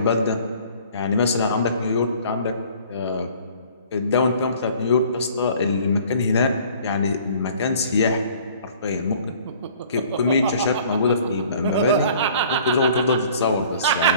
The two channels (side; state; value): both; inverted; correlation -0.52